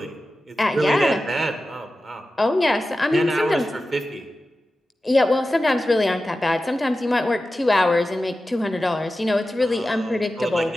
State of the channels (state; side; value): normal; both; correlation 0.94